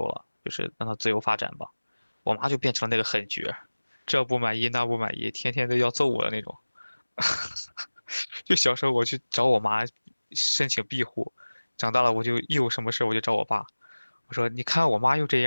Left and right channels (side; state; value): both; inverted; correlation -1.00